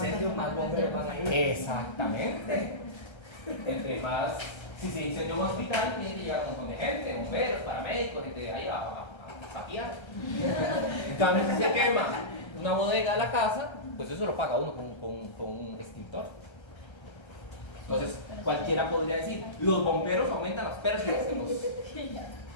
más bomberos van a ir. Exactamente. Entre más, si se incendia un hospital, tiene que llegar un montón de gente, bomberos, paramédicos, gente de ahí a patear. En cambio, si se quema una bodega de la casa, pues eso lo paga uno con un extintor. Entonces, cualquiera podría decir, los bomberos aumentan las pérdidas en los...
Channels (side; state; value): right; late; 1.3 ms